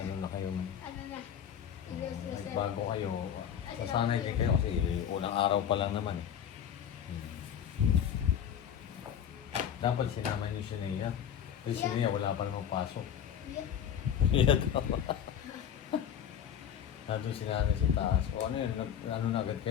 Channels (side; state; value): right; quieter; 9.1 dB